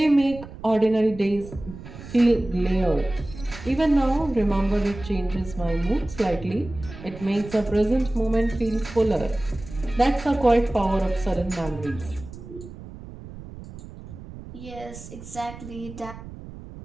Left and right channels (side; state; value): right; noise; rumble, 14 dB below the sound